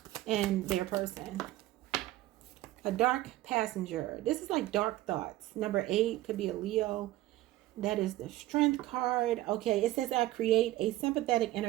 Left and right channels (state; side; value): quieter; left; 16.1 dB